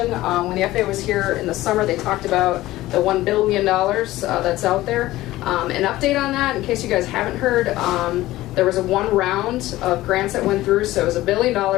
When the FAA was here in the summer, they talked about the $1 billion that's out there. An update on that, in case you guys haven't heard, there was one round of grants that went through, so it was $1 billion.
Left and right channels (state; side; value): quieter; right; 16.7 dB